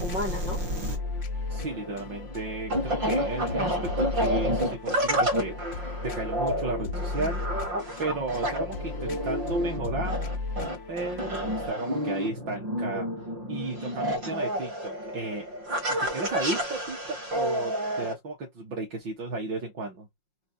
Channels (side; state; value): left; late; 5.6 ms